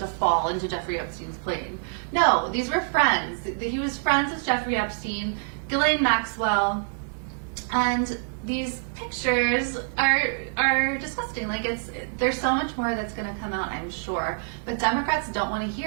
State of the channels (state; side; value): silent; left; 61 dB below the other